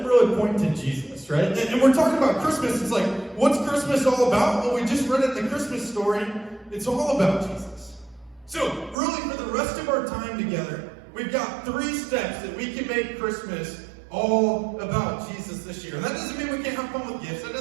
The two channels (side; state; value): left; drops out; at 9.0 s